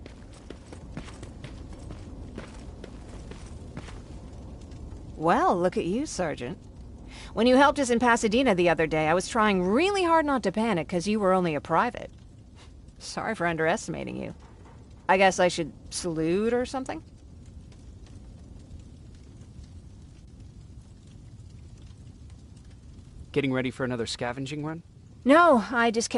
Well, look at you, Sergeant. When you helped us in Pasadena the other day, I was trying really hard not to panic because you were only a private. Sorry for underestimating you. I guess I should salute or something? Getting ready for another scavenging run? No, I just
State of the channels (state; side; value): identical; both; correlation 1.00